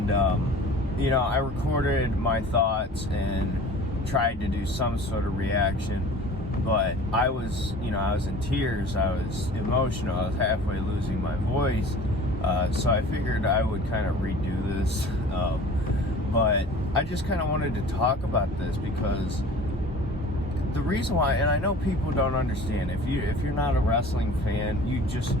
I recorded my thoughts and tried to do some sort of reaction, but I was in tears, I was emotional, I was halfway losing my voice, so I figured I would kind of redo this. But I just kind of wanted to talk about this because the reason why, and I know people don't understand, if you're not a wrestling fan, you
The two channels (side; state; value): both; normal; correlation 0.43